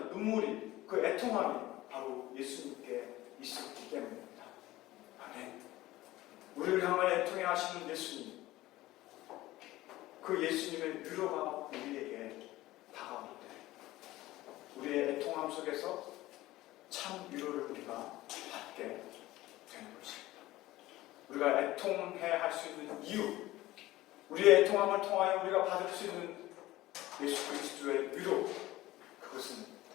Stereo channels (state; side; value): quieter; right; 17.1 dB